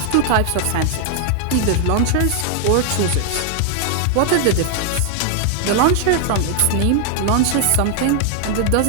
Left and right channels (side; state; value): both; different; correlation 0.00